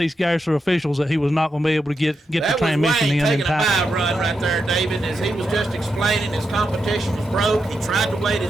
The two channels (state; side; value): normal; both; correlation 0.86